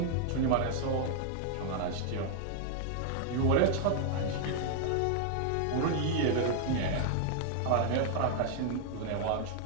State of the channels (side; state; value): both; different; correlation 0.00